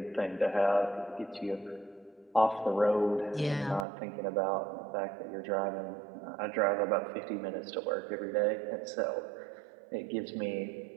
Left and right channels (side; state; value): left; drops out; at 3.9 s